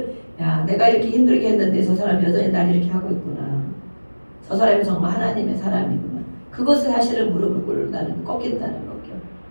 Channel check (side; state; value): both; inverted; correlation -1.00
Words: 내가 이렇게 힘들게 했는데 저 사람이 여전히 날 이렇게 하고 있구나. 저 사람이 정말 하나님의 사람이구나. 그것을 사실은 무릎을 꿇는다는 꺾인다는 거죠.